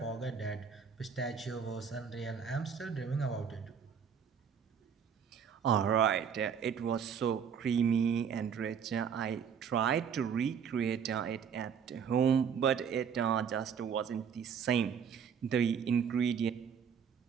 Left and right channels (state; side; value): quieter; left; 7.2 dB